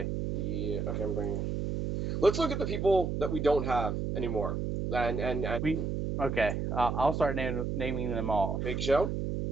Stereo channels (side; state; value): right; noise; hum, 2 dB below the sound